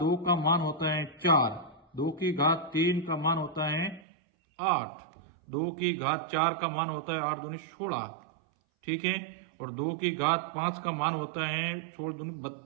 2 का मान होता है 4, 2 की घात 3 का मान होता है 8, 2 की घात 4 का मान होता है 8 दूनी 16। ठीक है, और 2 की घात 5 का मान होता है 16 दूनी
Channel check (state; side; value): drops out; left; at 4.0 s